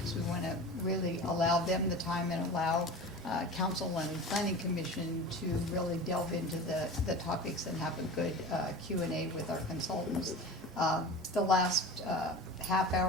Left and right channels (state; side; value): normal; both; correlation 0.33